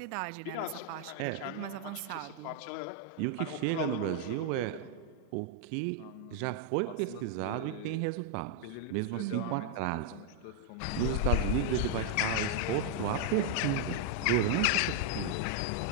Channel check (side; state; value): both; different; correlation 0.00